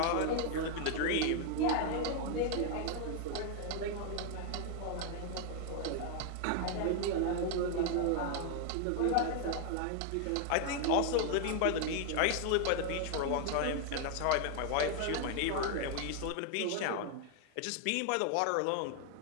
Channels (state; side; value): different; both; correlation 0.00